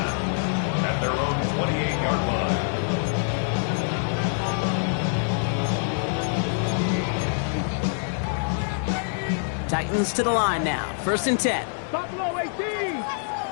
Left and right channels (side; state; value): right; silent; digital silence